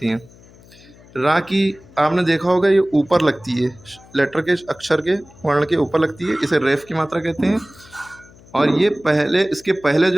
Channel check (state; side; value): noise; left; hum, 24 dB below the sound